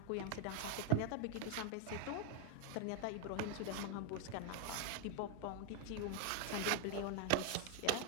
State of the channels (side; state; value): both; different; correlation 0.00